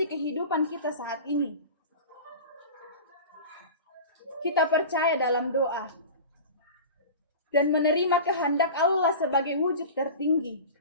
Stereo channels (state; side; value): inverted; both; correlation -0.33